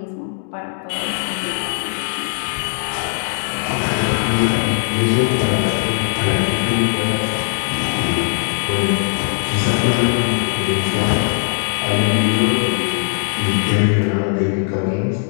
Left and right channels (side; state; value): right; silent; digital silence